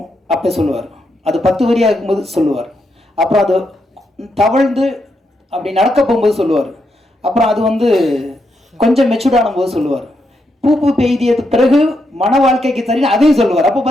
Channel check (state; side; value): normal; both; correlation 0.81